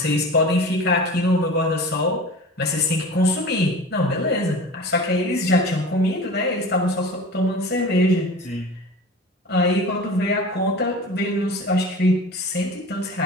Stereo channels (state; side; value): normal; both; correlation 0.36